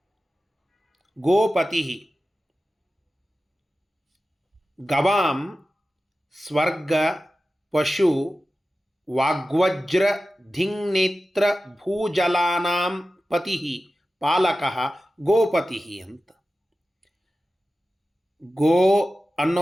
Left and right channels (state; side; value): normal; both; correlation 0.94